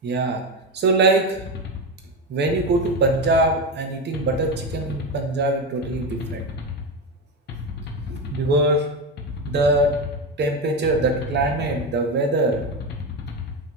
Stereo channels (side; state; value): both; normal; correlation 0.16